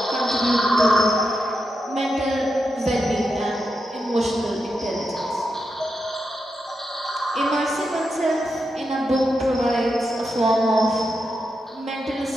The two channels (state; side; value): normal; both; correlation 0.86